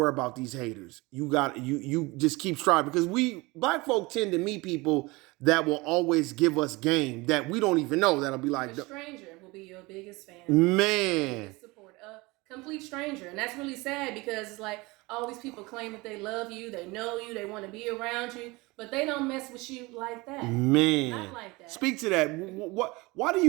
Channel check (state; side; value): quieter; left; 23.5 dB